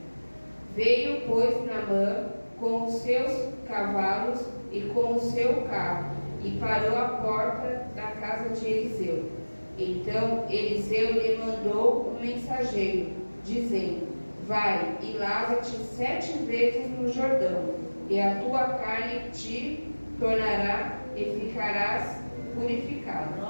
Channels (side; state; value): both; inverted; correlation -1.00